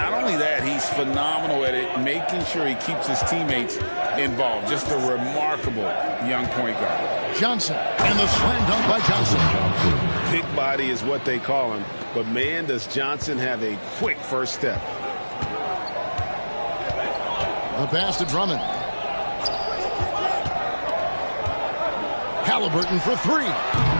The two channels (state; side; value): inverted; both; correlation -1.00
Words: only that, he's phenomenal at it, making sure he keeps his teammates involved. Just a remarkable young point guard. Johnson, and the slam dunk by Johnson. Big body is what they call him, but man, does Johnson have a quick first step. The pass to Drummond. Halliburton for three.